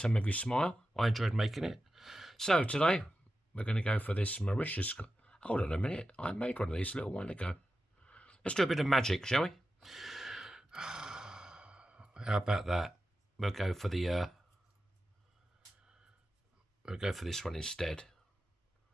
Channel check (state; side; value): normal; both; correlation 0.91